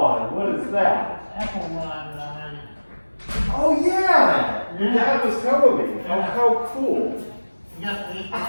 What is that? Apple wine that I made. Oh, yeah. Your dad was telling me. Oh, how cool. You got the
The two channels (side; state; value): both; inverted; correlation -1.00